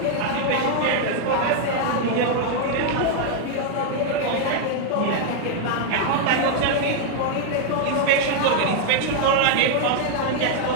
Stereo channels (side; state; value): both; different; correlation 0.00